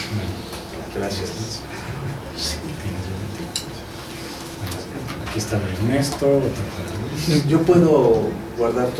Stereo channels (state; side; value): identical; both; correlation 1.00